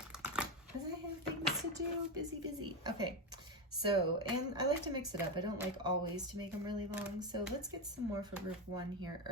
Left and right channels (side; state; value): both; normal; correlation 0.12